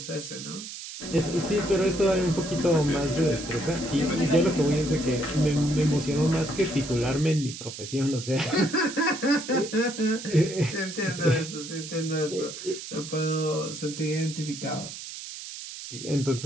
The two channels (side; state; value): right; noise; hiss, 10 dB below the sound